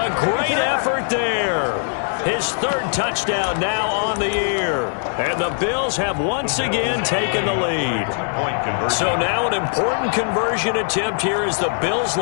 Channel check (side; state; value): right; silent; digital silence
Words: great effort there. His 3rd touchdown now on the year. And the Bills have once again taken the lead. So now an important conversion attempt here as the Bills